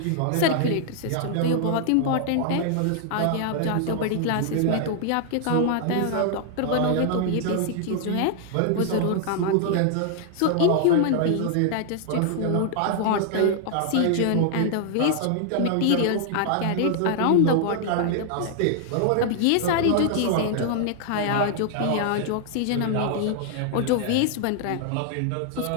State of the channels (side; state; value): both; different; correlation 0.00